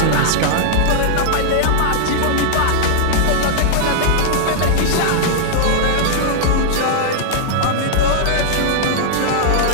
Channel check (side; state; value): both; different; correlation -0.01